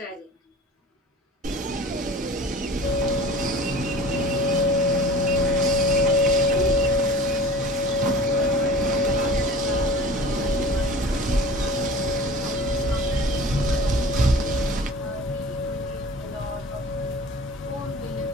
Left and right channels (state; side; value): normal; both; correlation 0.41